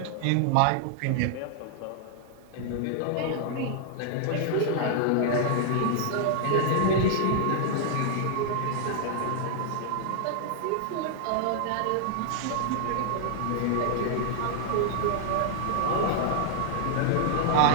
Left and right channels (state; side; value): different; both; correlation -0.01